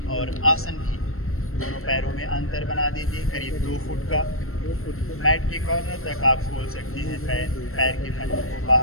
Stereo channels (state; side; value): late; right; 0.62 ms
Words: और आसन भी। दोनों पैरों में अंतर बना दीजिए करीब 2 फुट का। मैट के कॉर्नर तक आप खोल सकते हैं। पैर के पंजों को